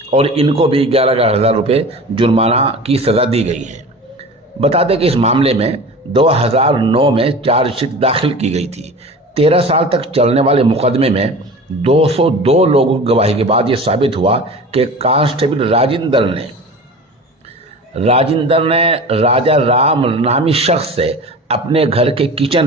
और इनको भी 11,000 रुपये जुर्माना की सज़ा दी गई है। बता दें कि इस मामले में 2009 में चार्जशीट दाखिल की गई थी। 13 साल तक चलने वाले मुकदमे में 202 लोगों की गवाही के बाद ये साबित हुआ कि कांस्टेबल राजेंद्र ने राजा राम नामी शख्स से अपने घर के किचन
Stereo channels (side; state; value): both; normal; correlation 0.36